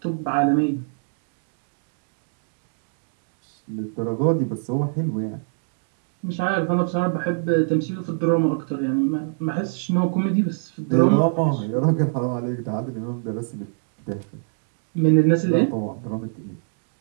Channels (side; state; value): left; silent; digital silence